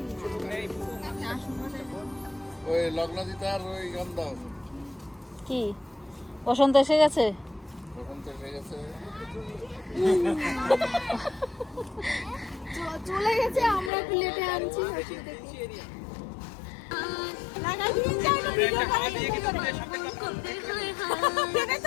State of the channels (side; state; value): right; drops out; at 13.9 s